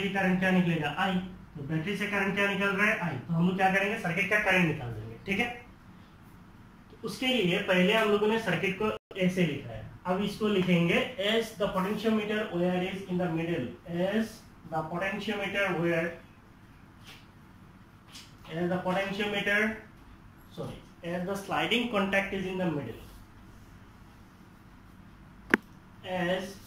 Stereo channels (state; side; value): identical; both; correlation 1.00